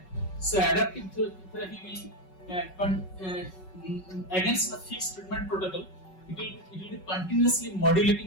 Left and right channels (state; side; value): late; right; 5.3 ms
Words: So, adaptive therapy will against the fixed treatment protocol. It will be continuously